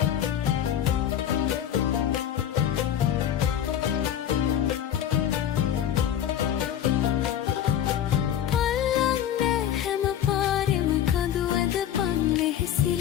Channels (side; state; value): right; quieter; 10.3 dB